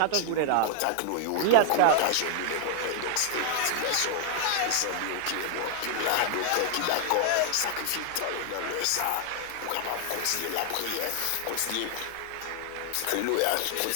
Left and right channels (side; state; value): both; different; correlation 0.00